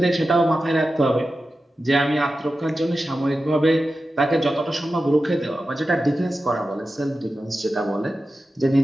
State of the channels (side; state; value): both; normal; correlation 0.92